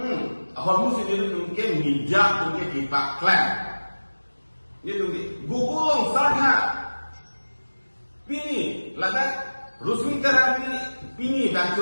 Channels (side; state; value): both; inverted; correlation -1.00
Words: Ahor musi nila tungke mijak tungke di Paklan. Nila tungke gugulong sarha. Pini, ladak Rusmi Terang Pini dan